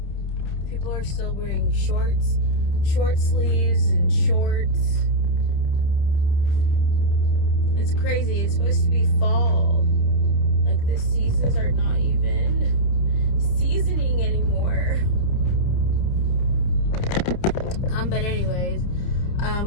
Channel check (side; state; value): right; late; 30 ms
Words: People are still wearing shorts, short sleeves, and shorts. It's crazy. It's supposed to be fall. Like, the seasons are not even seasoning anymore. But anyways,